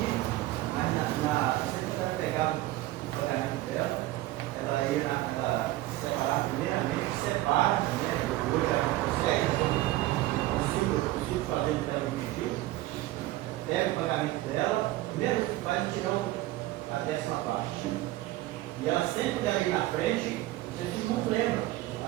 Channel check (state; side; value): quieter; left; 16.9 dB